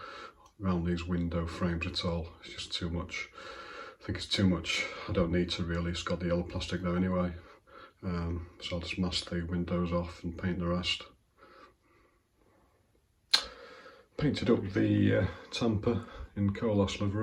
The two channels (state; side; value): identical; both; correlation 1.00